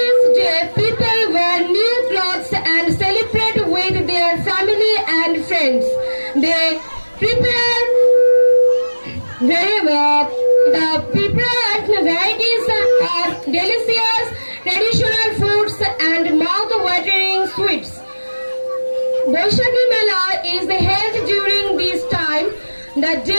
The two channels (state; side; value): inverted; both; correlation -1.00